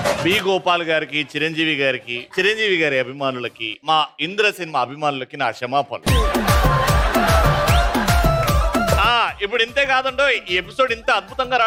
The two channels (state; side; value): identical; both; correlation 1.00